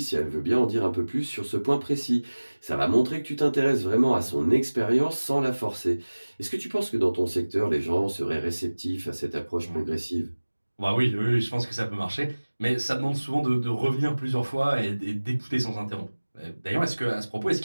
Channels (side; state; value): both; inverted; correlation -1.00